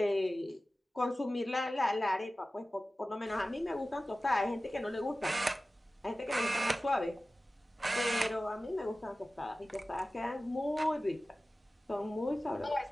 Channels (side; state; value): both; normal; correlation 0.96